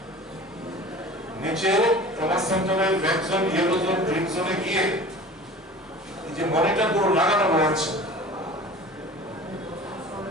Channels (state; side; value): normal; both; correlation 0.40